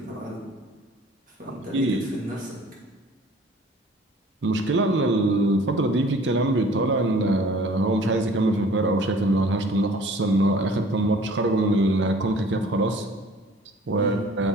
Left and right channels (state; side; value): normal; both; correlation 0.50